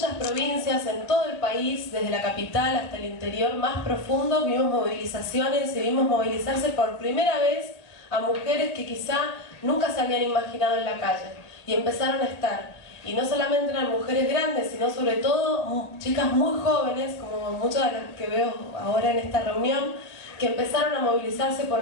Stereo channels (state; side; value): late; right; 1.9 ms